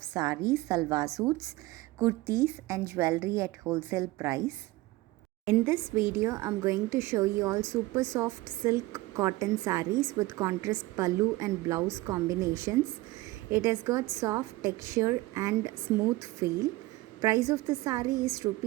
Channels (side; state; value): left; quieter; 19.4 dB